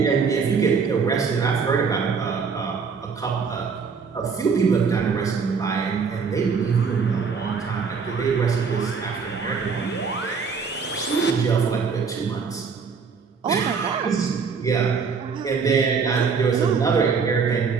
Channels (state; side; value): quieter; left; 5.6 dB